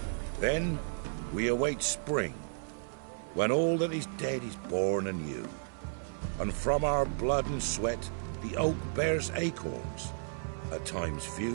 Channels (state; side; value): silent; left; 56 dB below the other